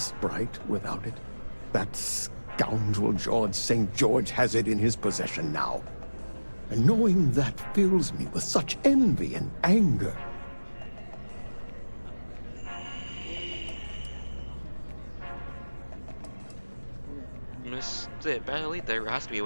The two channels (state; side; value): inverted; both; correlation -1.00